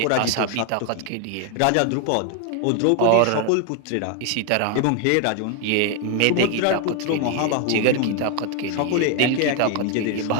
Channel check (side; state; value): both; different; correlation 0.01